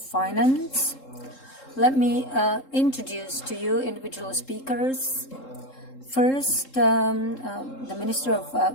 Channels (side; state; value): right; late; 3.7 ms